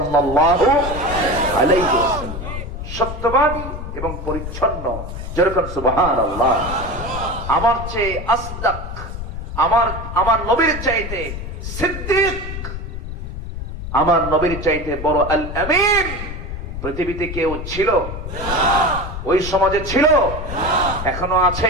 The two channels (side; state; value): left; noise; rumble, 7 dB below the sound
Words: আলাইহি ওয়াসাল্লাম। সত্যবাদী এবং পরিচ্ছন্ন, যেরকম সুবহানাল্লাহ। আমার চেয়ে আসদাক, আমার নবীর চাইতে সিদ্দিক, আমার নবীর চাইতে বড় আল আমিন পৃথিবীতে কেউ ছিল? ওই সমাজে ছিল? এখনো